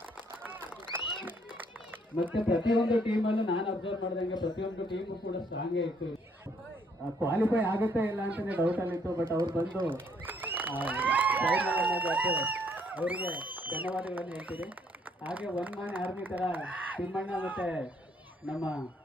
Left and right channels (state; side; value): normal; both; correlation 0.67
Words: ಮತ್ತೆ ಪ್ರತಿಯೊಂದು ಟೀಮಲ್ಲೂ ನಾನು ಅಬ್ಸರ್ವ್ ಮಾಡಿದಂಗೆ ಪ್ರತಿಯೊಂದು ಟೀಮು ಕೂಡ ಸ್ಟ್ರಾಂಗೇ ಇತ್ತು. ಕ್ವಾಲಿಫೈ ಆಗುತ್ತೆ ಇಲ್ಲ ಅಂತಾನೆ ಡೌಟ್ ಅಲ್ಲಿತ್ತು, ಬಟ್ ಅವ್ರು ಬಂದು ಅವರಿಗೆ ಧನ್ಯವಾದಗಳನ್ನು ಹೇಳ್ತೀರಿ. ಹಾಗೆ ಒನ್ ಮ್ಯಾನ್ ಆರ್ಮಿ ಥರ ತಿಮ್ಮಣ್ಣ ಮತ್ತು ನಮ್ಮ